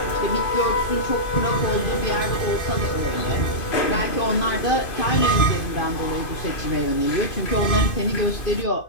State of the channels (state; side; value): late; right; 2.5 ms